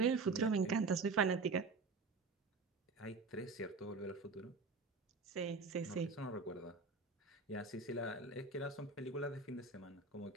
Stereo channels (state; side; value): quieter; left; 4.1 dB